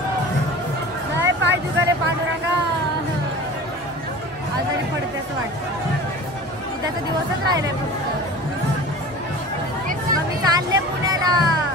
नाही पाय दुखायले पांडुरंगा, आजारी पडते असं वाटतं. उद्याचा दिवसच राहिलाय फक्त. मग मी चालले पुण्याला.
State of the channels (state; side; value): normal; both; correlation 0.38